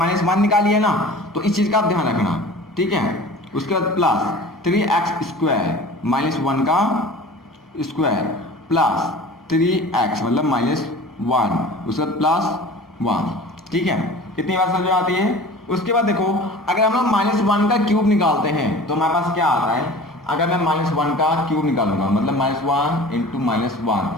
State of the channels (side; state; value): both; normal; correlation 0.41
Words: निकाली है ना, तो इस चीज का आप ध्यान रखना। ठीक है, उसके बाद प्लस 3x² -1 का स्क्वायर प्लस 3x मतलब -1, उसके बाद प्लस 1। ठीक है, कितनी बार समझ में आती है। उसके बाद देखो, अगर हम लोग -1 का क्यूब निकालते हैं तो हमारे पास क्या आता है, अगर मैं -1 का क्यूब निकालूंगा मतलब -1 इंटू -1